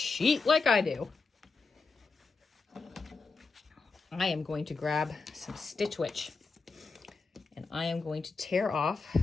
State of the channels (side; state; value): right; quieter; 4.3 dB